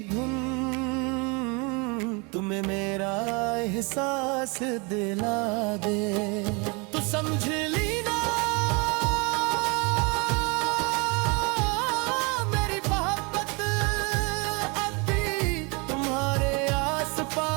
धुन तुम्हें मेरा एहसास दिला दे, तो समझ लेना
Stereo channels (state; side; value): quieter; left; 30.3 dB